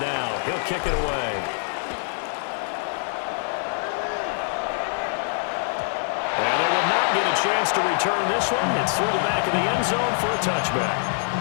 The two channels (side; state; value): right; silent; 62 dB below the other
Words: He'll kick it away. And they will not get a chance to return this one. It's through the back of the end zone for a touchback.